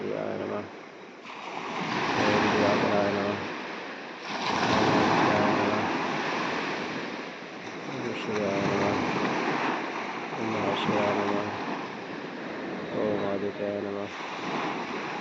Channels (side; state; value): both; identical; correlation 1.00